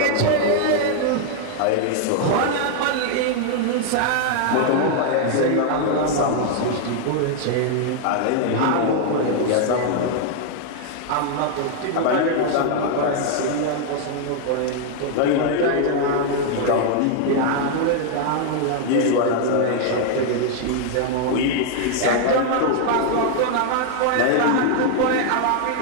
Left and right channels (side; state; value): both; different; correlation 0.00